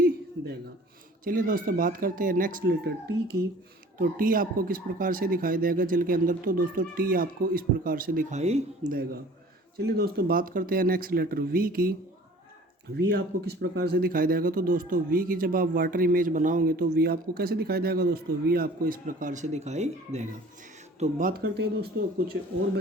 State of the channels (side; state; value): both; normal; correlation 0.48